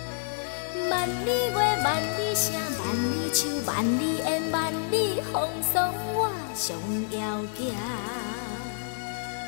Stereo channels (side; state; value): right; silent; digital silence